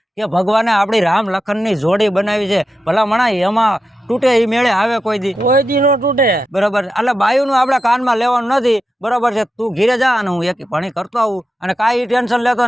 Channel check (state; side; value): normal; both; correlation 0.89